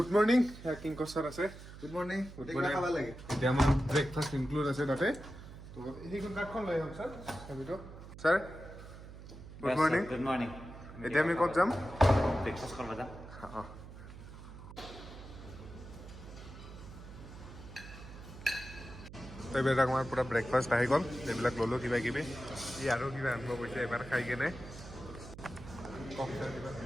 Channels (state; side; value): noise; right; hum, 14 dB below the sound